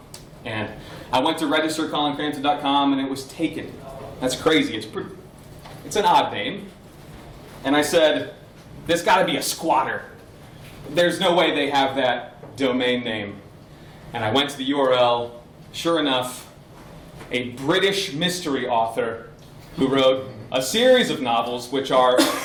And I went to register ColinCrampton.com, and it was taken. That's crazy. It's an odd name. And I said, there's got to be a squatter. There's no way they have that domain name. And I went to the URL. Sure enough, a British mystery author who wrote a series of novels which are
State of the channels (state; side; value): identical; both; correlation 1.00